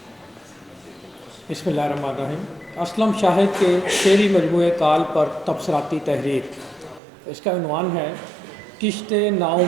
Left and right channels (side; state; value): left; drops out; at 7.0 s